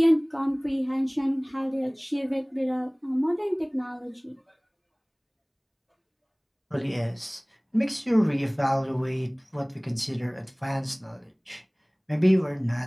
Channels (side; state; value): both; identical; correlation 1.00